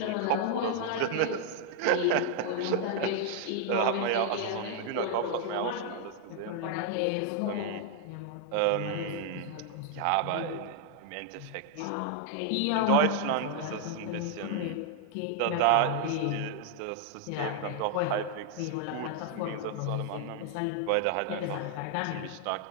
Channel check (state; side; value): different; both; correlation 0.00